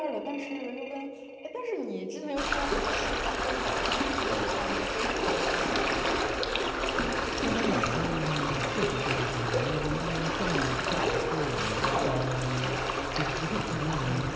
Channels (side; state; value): both; identical; correlation 1.00